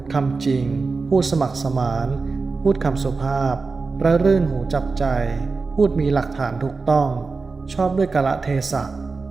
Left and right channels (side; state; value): left; quieter; 4.2 dB